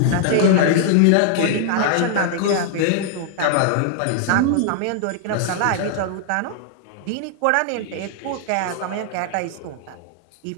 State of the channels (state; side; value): different; both; correlation -0.01